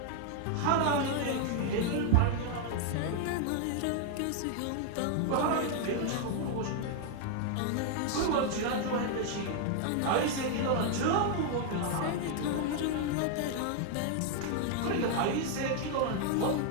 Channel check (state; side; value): different; both; correlation 0.00